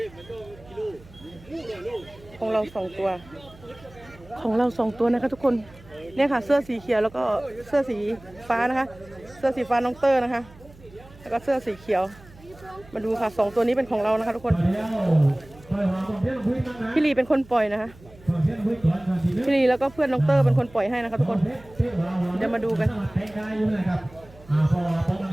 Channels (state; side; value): noise; right; hum, 22 dB below the sound